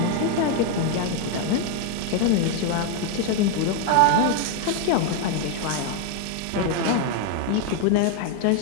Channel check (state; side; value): different; both; correlation 0.01